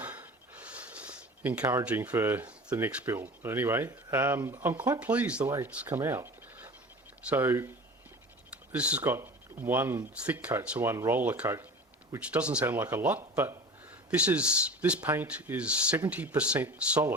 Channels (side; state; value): both; normal; correlation 0.37